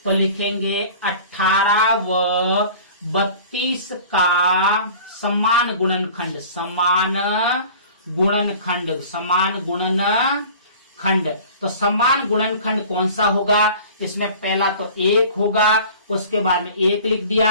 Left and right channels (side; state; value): both; inverted; correlation -0.43